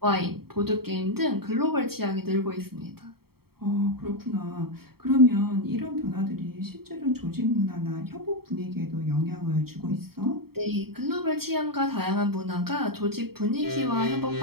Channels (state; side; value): late; left; 0.95 ms